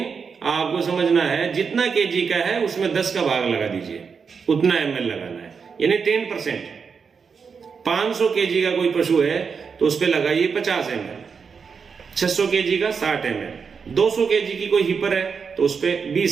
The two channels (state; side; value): quieter; left; 5.8 dB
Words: आपको समझना है जितना केजी का है उसमें 10 का भाग लगा दीजिए, उतना ml लगाना है, यानी 10%। 500 केजी का कोई पशु है तो उस पे लगाइए 50 ml, 600 केजी का 60 ml, 200 केजी की कोई हिपर है तो उस पे